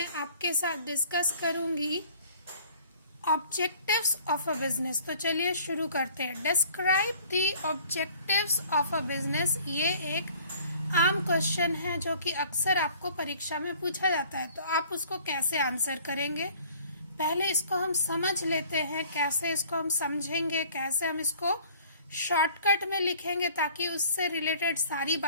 आपके साथ डिस्कस करूंगी ऑब्जेक्टिव्स ऑफ अ बिजनेस। तो चलिए शुरू करते हैं। Describe the objectives of a business. ये एक आम क्वेश्चन है जो कि अक्सर आपको परीक्षा में पूछा जाता है, तो आप उसको कैसे आंसर करेंगे। पहले इसको हम समझ लेते हैं, कैसे इसको हम समझेंगे, कैसे हम इसको शॉर्टकट में लिखेंगे ताकि उससे रिलेटेड सारी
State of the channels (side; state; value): both; inverted; correlation -0.53